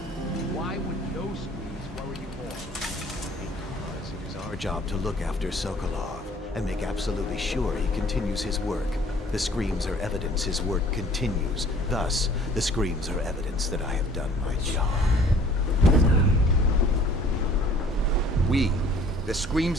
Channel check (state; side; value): normal; both; correlation 0.53